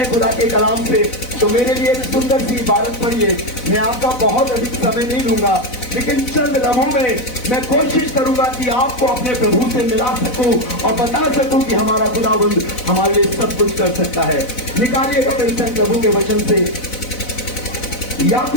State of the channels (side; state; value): right; late; 4.0 ms